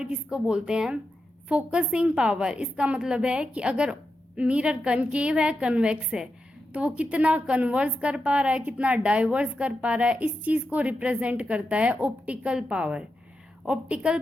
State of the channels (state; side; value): normal; both; correlation 0.88